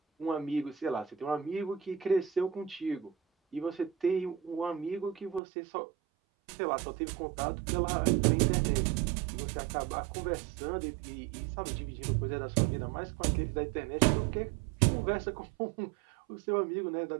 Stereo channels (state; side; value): drops out; left; at 5.4 s